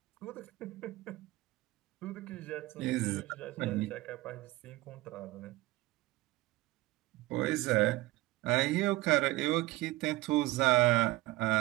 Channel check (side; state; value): left; quieter; 18.8 dB